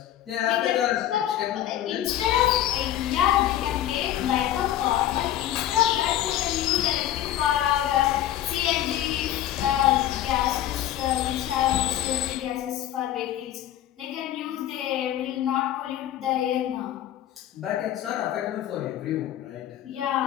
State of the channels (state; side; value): quieter; right; 12.4 dB